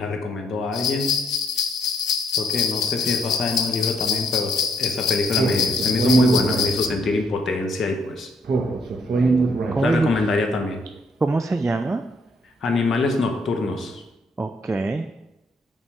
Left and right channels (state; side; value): normal; both; correlation 0.70